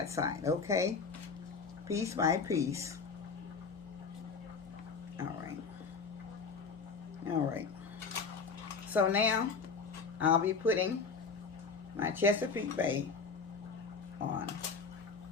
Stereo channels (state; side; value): quieter; right; 5.1 dB